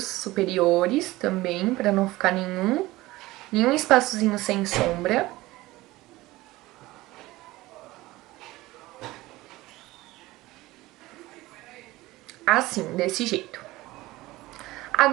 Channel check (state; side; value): quieter; left; 18.8 dB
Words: superiores também, para não ficar nenhum espaçozinho sem sombra. Assim, desse jeito.